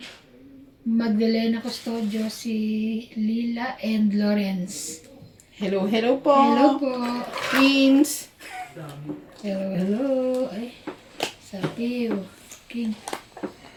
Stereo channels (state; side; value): identical; both; correlation 1.00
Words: Magdalena Custodio, si Lila and Lawrence. Hello po. Hello po. Twins. Hello, hello. Ay, sabi, king.